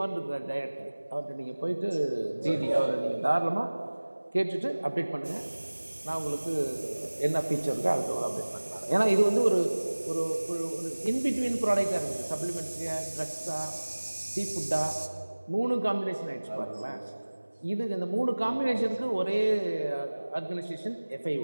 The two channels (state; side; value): inverted; both; correlation -1.00